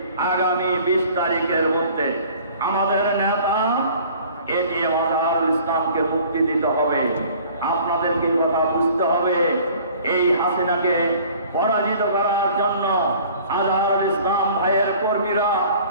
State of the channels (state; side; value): inverted; both; correlation -0.50